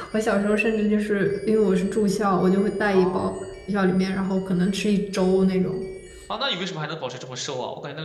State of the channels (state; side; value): identical; both; correlation 1.00